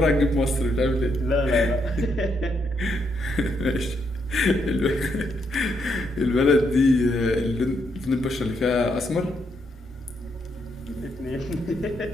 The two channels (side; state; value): both; normal; correlation 0.77